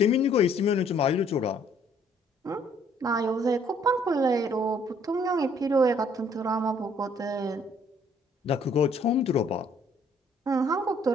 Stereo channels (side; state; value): both; normal; correlation 0.62